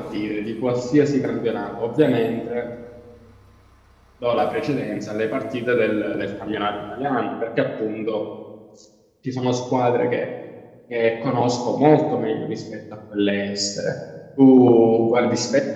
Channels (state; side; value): identical; both; correlation 1.00